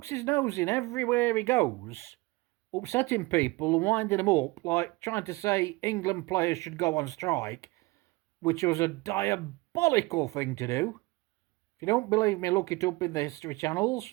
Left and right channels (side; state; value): left; quieter; 22.5 dB